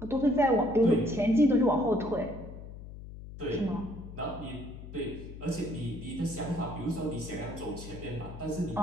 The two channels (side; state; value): left; noise; hum, 13 dB below the sound